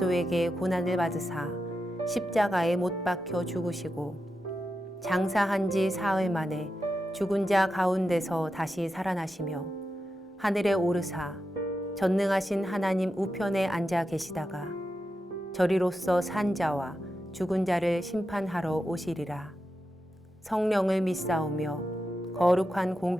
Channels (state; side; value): normal; both; correlation 0.89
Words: 고난을 받으사 십자가에 못 박혀 죽으시고 장사한 지 사흘 만에 죽은 자 가운데서 다시 살아나시며 하늘에 오르사 전능하신 하나님 우편에 앉아 계시다가 저리로서 산 자와 죽은 자를 심판하러 오시리라. 성령을 믿사오며 거룩한